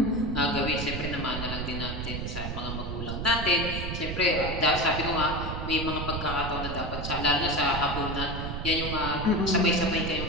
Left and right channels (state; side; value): noise; right; rumble, 5 dB below the sound